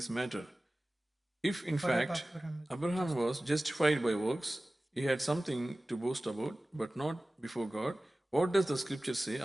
matter? If in fact Abraham was justified by works, he had something to boast about, but not before God. What does the scripture say?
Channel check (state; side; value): normal; both; correlation 0.97